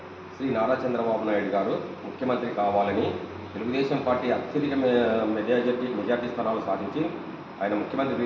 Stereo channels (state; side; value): identical; both; correlation 1.00